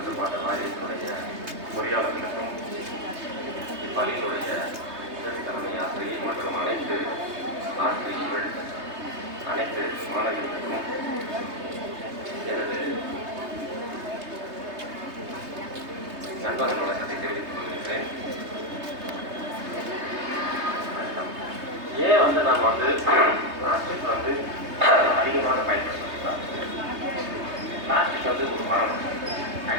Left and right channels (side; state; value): left; late; 3.2 ms